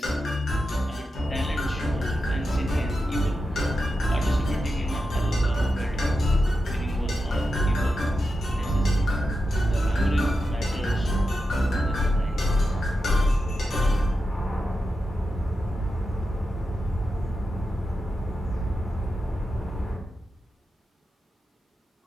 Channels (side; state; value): both; normal; correlation 0.89